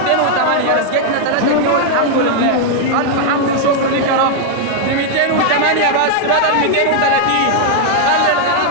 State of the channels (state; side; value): different; both; correlation 0.00